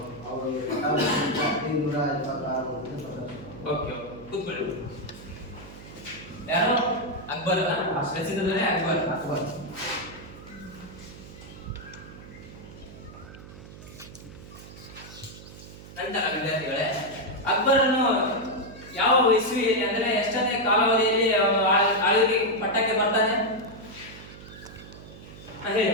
1526. ಓಕೆ, ಕೂತ್ಕೊಳ್ಳಿ. ಯಾರು? ಅಕ್ಬರ್. ಪ್ರಸಿದ್ಧನೇ ಅಕ್ಬರ್. ನಂತರ ವಿದ್ಯಾರ್ಥಿಗಳೇ, ಅಕ್ಬರನು ಯಾವ ಇಸ್ವಿಯಲ್ಲಿ, ಅಂದ್ರೆ ಎಷ್ಟನೇ ಕಾಲಾವಧಿಯಲ್ಲಿ ಆಳ್ವಿಕೆ ಪಟ್ಟಕ್ಕೆ ಬರ್ತಾನೆ? ಹೇಳಿ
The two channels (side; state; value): right; noise; hum, 16 dB below the sound